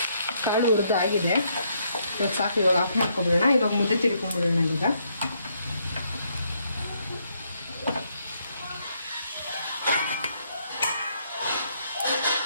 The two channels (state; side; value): inverted; both; correlation -0.73